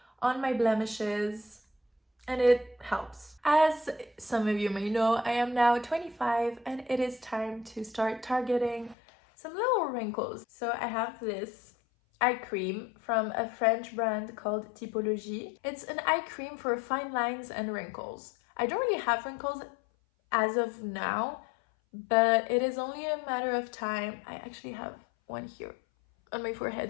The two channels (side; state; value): right; drops out; at 9.0 s